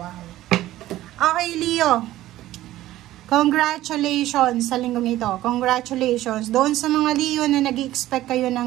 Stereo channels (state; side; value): quieter; left; 14.9 dB